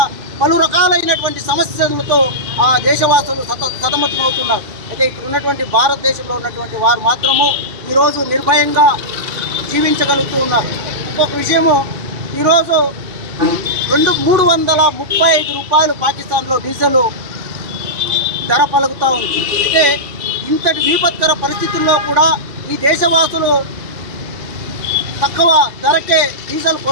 పలు రకాలైనటువంటి సమస్యలతో ఆ దేశవాసులు సతమతమవుతున్నారు. అయితే ఇక్కడ ఉన్నటువంటి భారతదేశంలో ఉన్నటువంటి వారు మాత్రము ఈరోజు నిర్భయంగా జీవించగలుగుతూ ఉన్నారు. ఇంకొక విషయము, ఈరోజు 335 రూపాయలు పాకిస్తాన్లో డీజిల్ ధర పలుకుతూ ఉంది. అయితే ఇంతటి విపత్కర పరిస్థితుల్లో కూడా ఈ దేశవాసులు తక్కువ ధరకే డీజిల్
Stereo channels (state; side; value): late; left; 2.5 ms